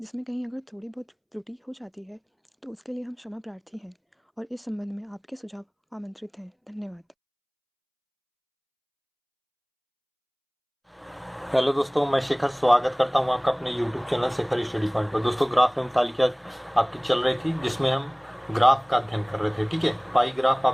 जिसमें कहीं अगर थोड़ी बहुत त्रुटि हो जाती है तो उसके लिए हम क्षमा प्रार्थी हैं और इस संबंध में आपके सुझाव आमंत्रित हैं। धन्यवाद। हेलो दोस्तों, मैं शेखर स्वागत करता हूं आपका अपने YouTube channel Shekhar study point पर। दोस्तों, ग्राफ एवं तालिका आपकी चल रही थी जिसमें हम ग्राफ का अध्ययन कर रहे थे। ठीक है, पाई ग्राफ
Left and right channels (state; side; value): identical; both; correlation 1.00